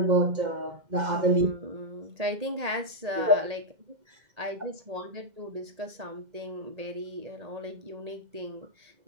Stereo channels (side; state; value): left; late; 1.8 ms